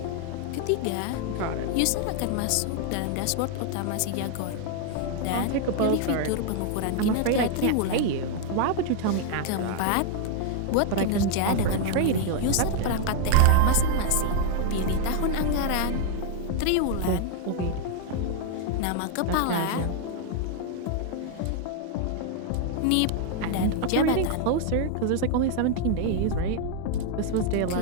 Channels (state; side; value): different; both; correlation 0.00